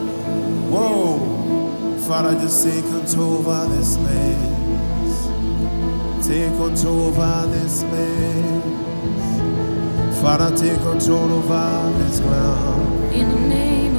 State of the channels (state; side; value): inverted; both; correlation -1.00